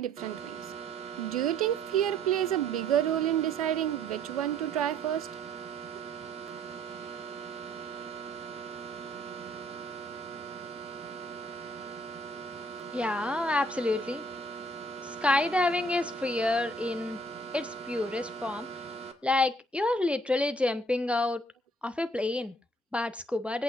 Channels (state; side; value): normal; both; correlation 0.61